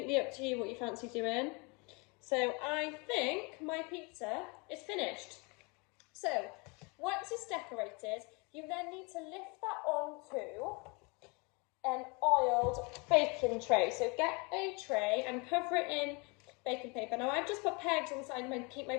up to you what you fancy doing. So I think my pizza is finished. So once it's decorated, you then need to lift that onto an oiled baking tray. So get a tray and cover it in baking paper. Now I've just put pegs on the side to keep my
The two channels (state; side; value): quieter; right; 30.1 dB